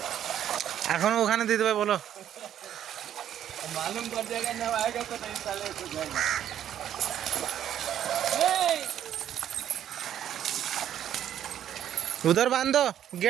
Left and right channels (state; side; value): quieter; left; 10.6 dB